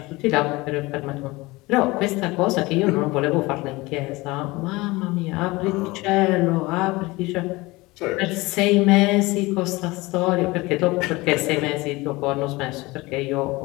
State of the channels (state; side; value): quieter; right; 22.0 dB